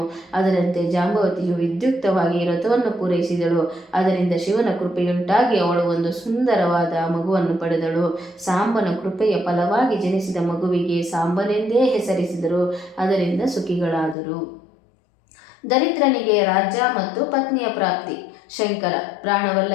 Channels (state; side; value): drops out; right; at 14.2 s